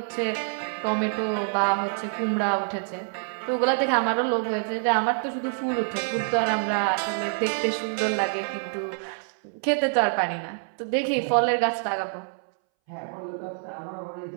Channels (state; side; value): silent; left; 61 dB below the other